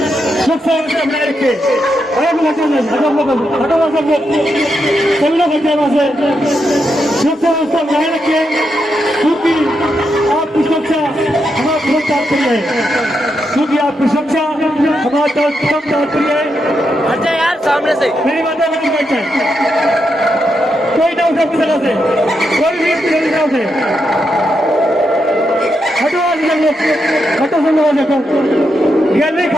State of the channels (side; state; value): both; normal; correlation 0.83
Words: सब बनाए रखे, सब लोग बच्चे वहां से व्यवस्था बनाए रखे क्योंकि आपकी सुरक्षा हमारा प्रथम तात्पर्य है, क्योंकि आपकी सुरक्षा हमारा प्रथम तात्पर्य है। हट जा यार सामने से। मेरी माता बहन बैठ जाए, कोई ना उठे अपनी जगह से, कोई भी अपनी जगह से हटो सब लोग देखो। गैलरी